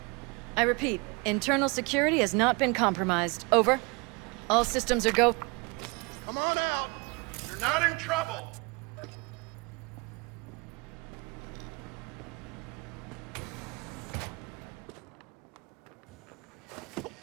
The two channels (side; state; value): left; quieter; 28.9 dB